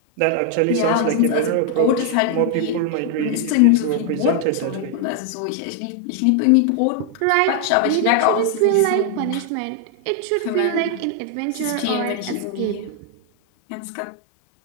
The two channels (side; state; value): both; different; correlation 0.00